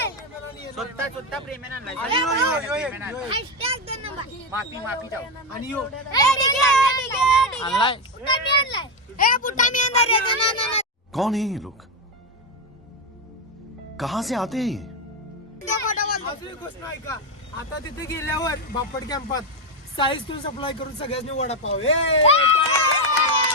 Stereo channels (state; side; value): normal; both; correlation 0.08